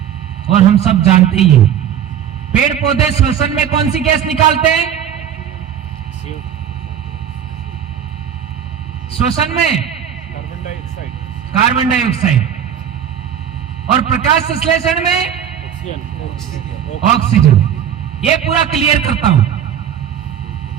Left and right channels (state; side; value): quieter; left; 9.1 dB